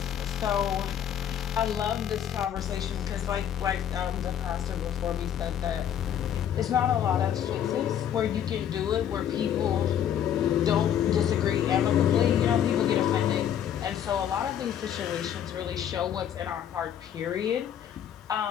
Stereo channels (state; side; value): quieter; right; 9.7 dB